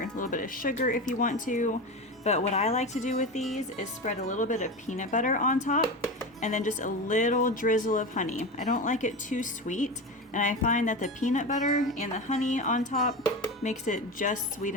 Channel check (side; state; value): both; normal; correlation 0.23